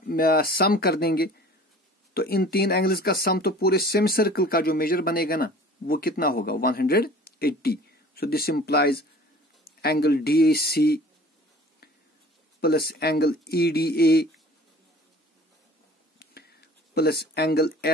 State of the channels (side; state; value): both; normal; correlation 0.46